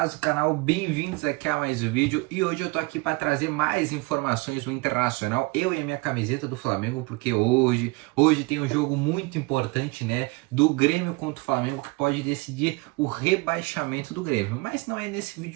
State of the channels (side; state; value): left; quieter; 26.0 dB